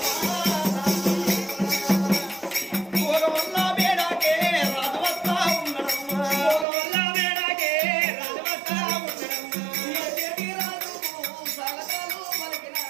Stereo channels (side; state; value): left; drops out; at 6.7 s